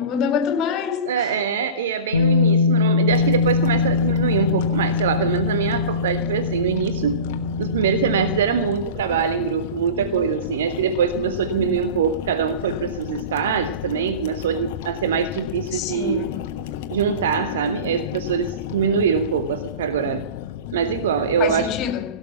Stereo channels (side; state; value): both; inverted; correlation -0.34